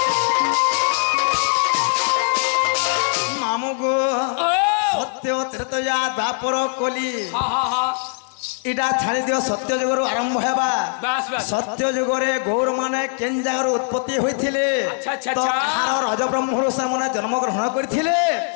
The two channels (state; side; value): silent; right; 58 dB below the other